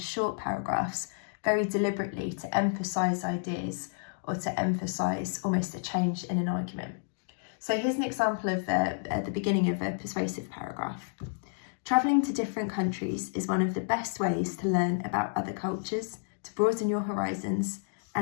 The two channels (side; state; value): right; silent; digital silence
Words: paragraphs, very deliberately to emphasise ideas or to emphasise almost a change in an argument. So here's an example of at the beginning of a persuasive paragraph. Travelling to different countries is one of the best ways to learn about other cultures, to broaden your horizons,